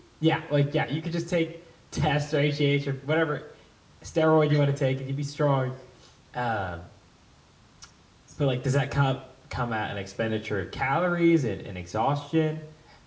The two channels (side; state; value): both; identical; correlation 1.00